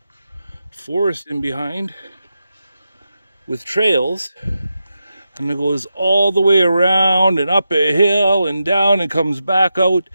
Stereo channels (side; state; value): both; inverted; correlation -0.88